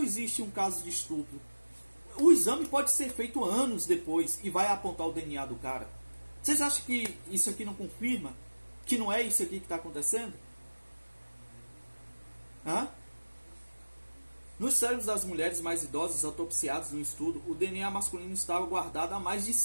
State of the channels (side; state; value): both; inverted; correlation -1.00